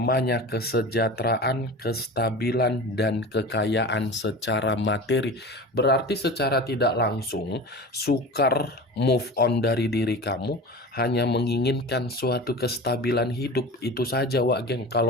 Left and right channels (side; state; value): both; normal; correlation 0.33